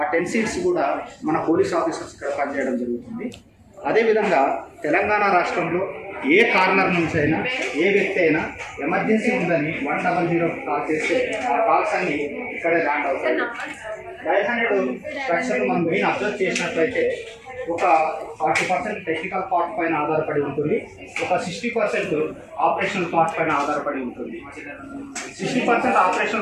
10 సీట్స్ కూడా మన పోలీస్ ఆఫీసర్స్ ఇక్కడ పనిచేయడం జరుగుతుంది. అదేవిధంగా తెలంగాణ రాష్ట్రంలో ఏ కార్నర్ నుంచి అయినా ఏ వ్యక్తి అయినా ఎమర్జెన్సీ ఉందని 100 కాల్ చేస్తే ఆ కాల్స్ అన్ని ఇక్కడే ల్యాండ్ అవుతాయి. డయల్ 100 స్ట్రక్చర్ మనం మెయిన్ అబ్జర్వ్ చేసినట్లయితే ఒక 40% టెక్నికల్ పార్ట్ పైన ఆధారపడి ఉంటుంది, ఒక 60% ఆపరేషనల్ పార్ట్ పైన ఆధారపడి ఉంటుంది. 60%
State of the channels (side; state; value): both; identical; correlation 1.00